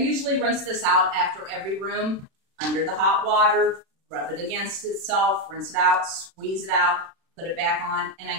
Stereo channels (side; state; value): left; late; 36 ms